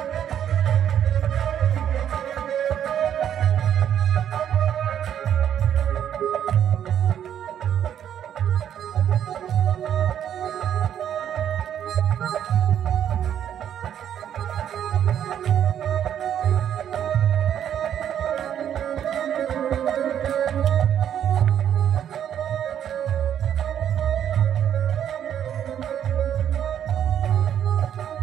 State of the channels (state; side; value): quieter; left; 9.7 dB